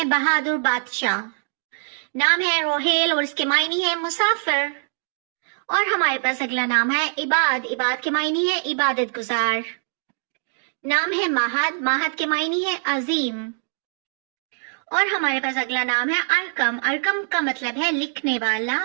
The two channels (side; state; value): left; silent; digital silence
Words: بہادر بادشاہ۔ نام ہے روہیل اور اس کے معنی ہے مسافر۔ اور ہمارے پاس اگلا نام ہے عباد، عباد کے معنی ہے عبادت گزار۔ نام ہے ماہد، ماہد کے معنی ہے عظیم۔ اور ہمارے پاس اگلا نام ہے ارکم، ارکم کا مطلب ہے لکھنے والا۔